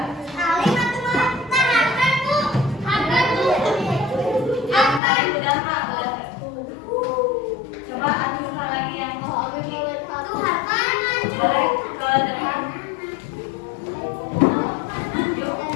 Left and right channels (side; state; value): right; drops out; at 5.0 s